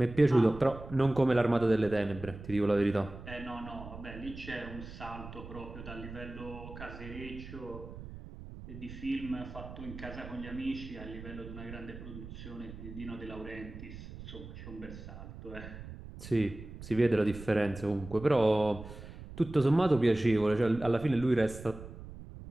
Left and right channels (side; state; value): right; noise; rumble, 13 dB below the sound